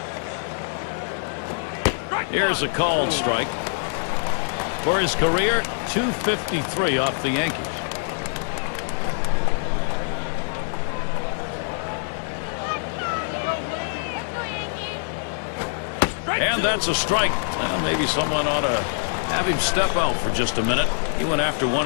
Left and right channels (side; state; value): right; silent; 57 dB below the other